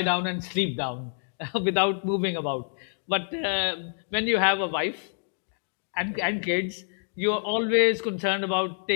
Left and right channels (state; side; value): silent; right; digital silence